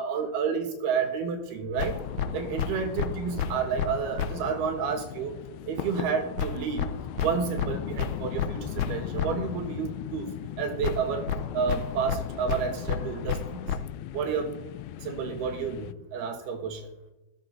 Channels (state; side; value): late; left; 13 ms